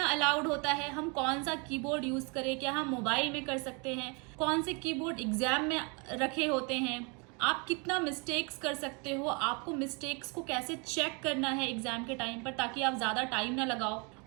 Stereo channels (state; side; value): quieter; left; 32.3 dB